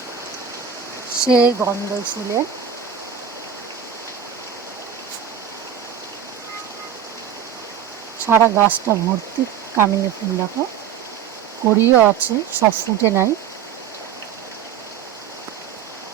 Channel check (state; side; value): quieter; left; 8.6 dB